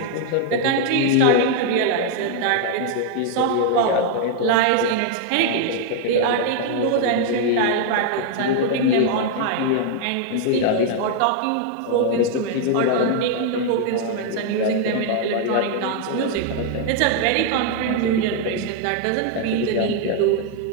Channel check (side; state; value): both; different; correlation 0.00